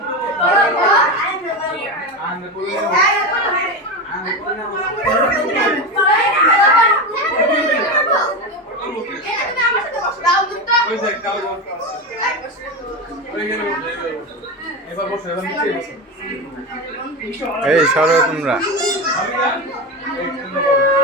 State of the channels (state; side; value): normal; both; correlation 0.18